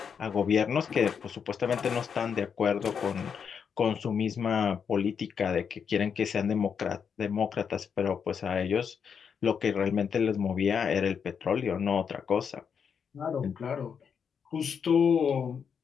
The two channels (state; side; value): quieter; right; 6.9 dB